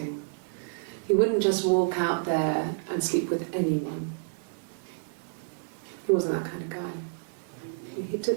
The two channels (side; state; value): left; silent; digital silence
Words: He wouldn't just walk out there and sleep with anyone. He wasn't that kind of guy. He